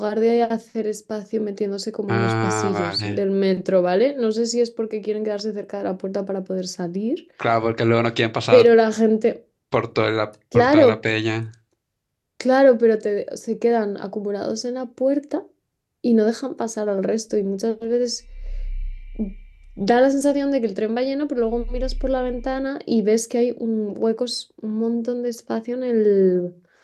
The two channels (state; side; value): identical; both; correlation 1.00